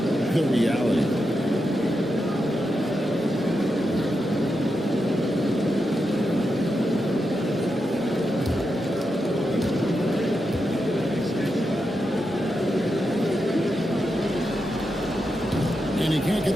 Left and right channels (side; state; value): both; normal; correlation 0.87